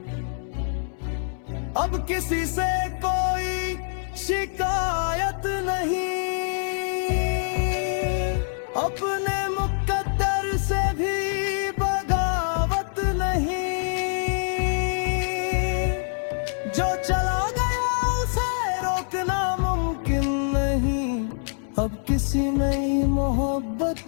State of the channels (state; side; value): silent; right; 62 dB below the other